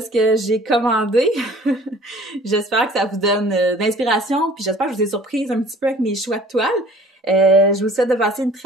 ce que j'ai commandé. J'espère que ça vous donne d'inspiration, puis j'espère que je vous ai surprise un petit peu avec mes choix de toiles. Je vous souhaite de passer une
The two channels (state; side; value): normal; both; correlation 0.51